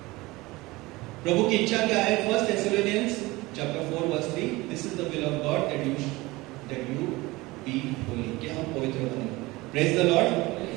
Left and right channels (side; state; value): left; quieter; 21.2 dB